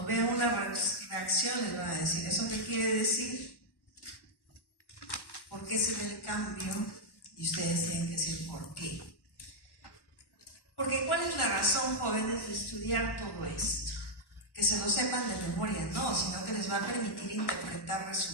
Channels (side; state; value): right; late; 1.1 ms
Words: vean una reacción les van a decir, ¿eso qué quiere decir? ¿Por qué se ve el cambio? Y ustedes tienen que decir ¿por qué? Porque ¿cuál es la razón, jóvenes, de estudiar todo esto? Que se lo sepan de memoria, no, sino que les va a permitir interpretar